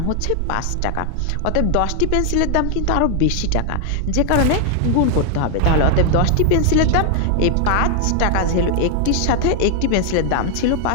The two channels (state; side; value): different; both; correlation 0.00